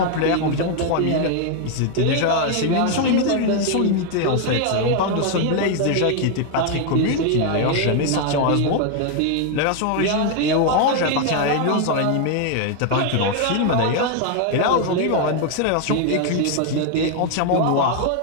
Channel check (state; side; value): different; both; correlation 0.00